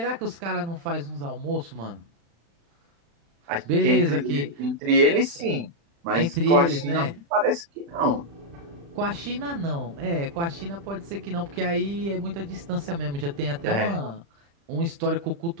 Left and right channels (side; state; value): left; late; 35 ms